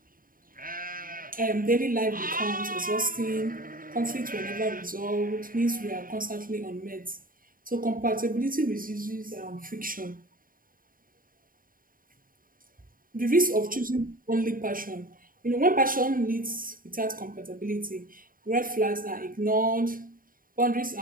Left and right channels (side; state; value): left; late; 0.41 ms